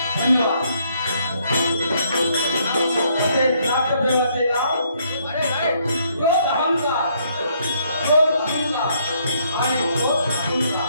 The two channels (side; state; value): both; inverted; correlation -0.70